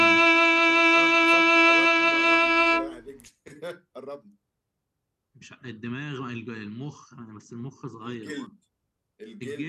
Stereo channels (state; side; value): identical; both; correlation 1.00